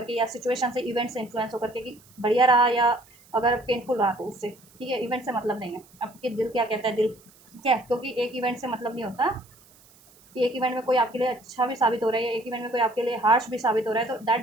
के या सिचुएशन से, इवेंट से इन्फ्लुएंस होकर के, कि बढ़िया रहा या अगर पेनफुल रहा तो उससे, ठीक है। इवेंट से मतलब नहीं है, आपके दिल क्या कहता है, दिल, ठीक है, क्योंकि एक इवेंट से मतलब नहीं होता कि एक इवेंट में कोई आपके लिए अच्छा भी साबित हो रहा है, एक इवेंट में कोई आपके लिए हार्श भी साबित हो रहा है, तो दैट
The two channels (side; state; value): right; noise; hiss, 27 dB below the sound